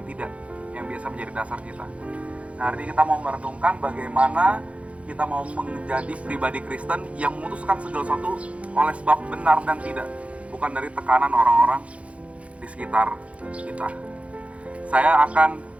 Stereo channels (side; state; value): left; late; 0.063 ms